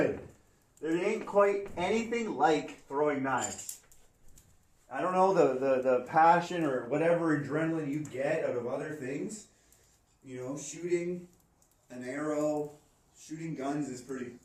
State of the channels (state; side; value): identical; both; correlation 1.00